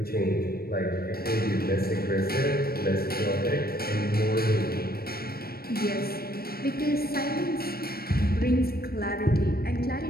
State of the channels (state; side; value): late; right; 0.44 ms